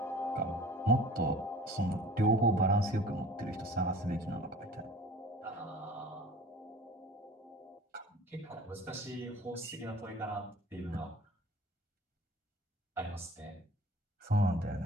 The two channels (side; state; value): both; normal; correlation 0.44